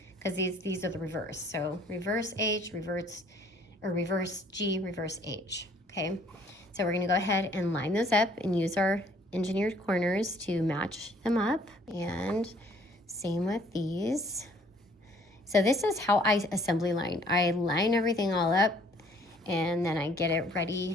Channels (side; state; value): both; normal; correlation 0.60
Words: because these are the reverse. So reverse H, reverse G, reverse H, okay? So we're gonna go ahead and line those up and use our engineered corners to match them up, and same with these. So this is how I assembly line. I line everything all up and then I get it